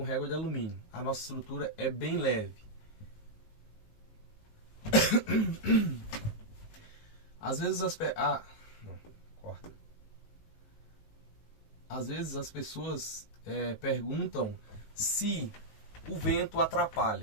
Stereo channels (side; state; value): right; late; 19 ms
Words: régua de alumínio. A nossa estrutura é bem leve. Às vezes Às vezes as pessoas perguntam se o vento